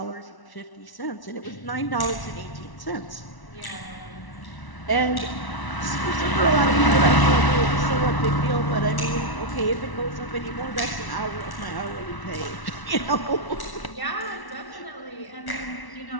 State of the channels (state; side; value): late; right; 1.1 ms